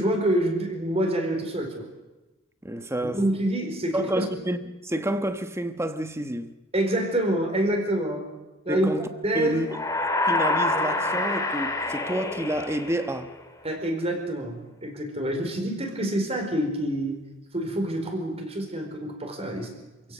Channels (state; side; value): normal; both; correlation 0.53